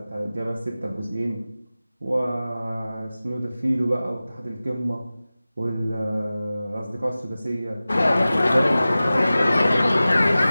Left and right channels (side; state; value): both; inverted; correlation -0.96